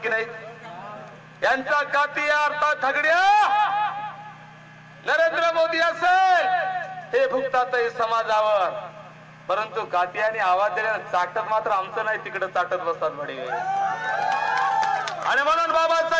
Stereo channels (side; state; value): both; identical; correlation 1.00